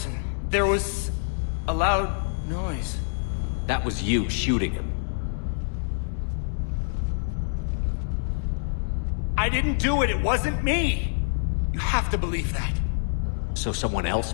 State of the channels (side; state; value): right; silent; digital silence